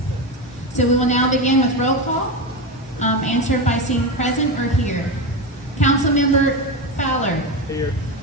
So we will now begin with roll call, answered by saying present or here. Councilmember Fowler. Here.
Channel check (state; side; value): normal; both; correlation 0.17